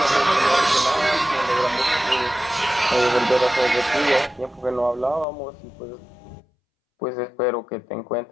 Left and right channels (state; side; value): drops out; right; at 5.2 s